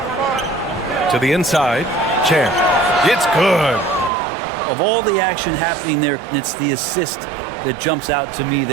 To the inside, Champ. It's good. Of all the action happening there, it's the assist that jumps out to me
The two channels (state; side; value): drops out; left; at 4.1 s